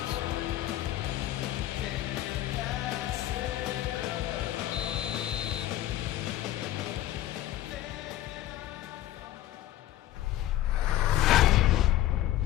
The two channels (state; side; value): quieter; right; 13.7 dB